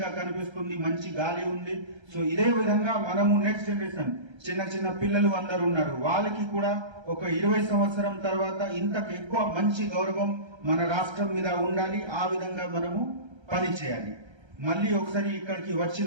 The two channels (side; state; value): left; late; 1.3 ms